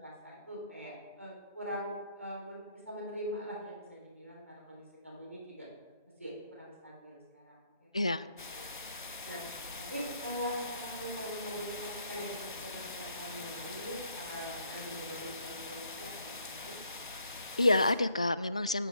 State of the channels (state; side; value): inverted; both; correlation -0.68